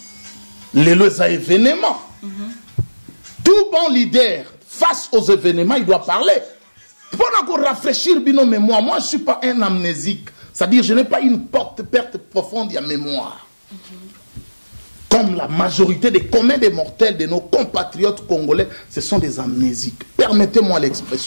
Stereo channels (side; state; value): both; inverted; correlation -1.00